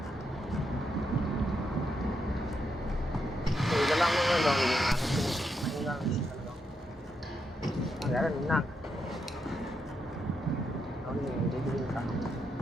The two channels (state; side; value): normal; both; correlation 0.81